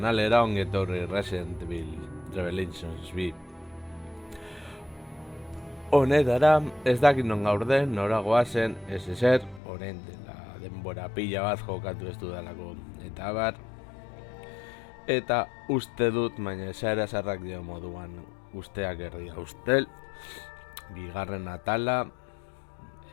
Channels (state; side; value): drops out; right; at 9.6 s